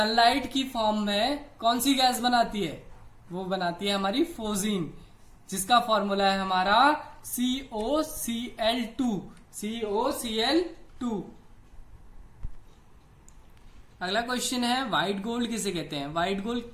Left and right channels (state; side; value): identical; both; correlation 1.00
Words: की फॉर्म में कौन सी गैस बनाती है? वो बनाती है हमारी फोजीन, जिसका फॉर्मूला है हमारा COCl2। COCl2। अगला क्वेश्चन है व्हाइट गोल्ड किसे कहते हैं? व्हाइट गोल्ड